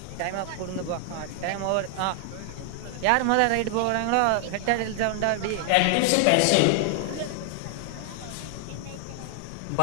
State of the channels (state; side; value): different; both; correlation 0.00